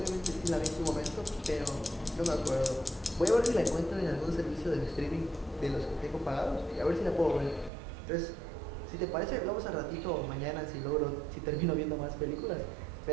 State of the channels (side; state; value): left; drops out; at 7.7 s